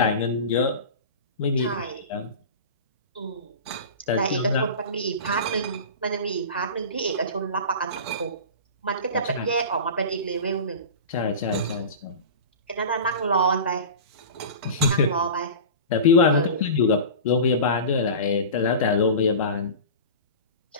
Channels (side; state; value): both; inverted; correlation -0.31